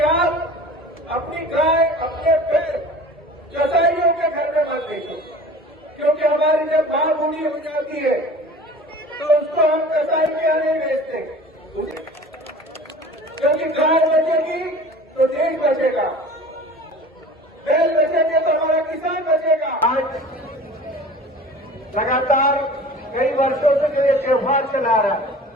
आप अपनी गाय, अपने पेड़ कसाईयों के घर में मत देखो, क्योंकि हमारी जब मां बूढ़ी हो जाती है तो उसको हम कसाई के यहाँ नहीं बेचते, क्योंकि गाय बचेगी तो देश बचेगा, बैल बचेंगे तो हमारा किसान बचेगा। आज लगातार कई वर्षों से जो ये त्योहार चला रहा है,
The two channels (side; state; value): both; normal; correlation 0.41